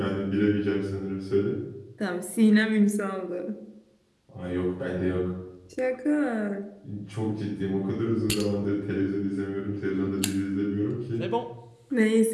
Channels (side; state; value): both; identical; correlation 1.00